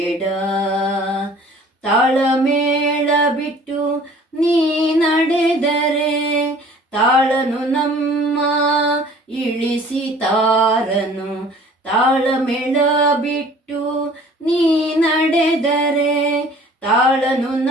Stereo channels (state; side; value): normal; both; correlation 0.50